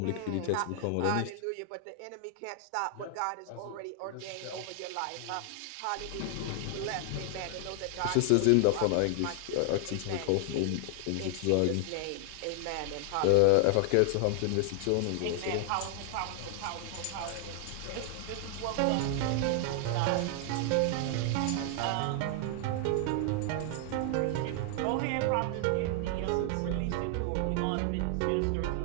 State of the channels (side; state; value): both; different; correlation 0.00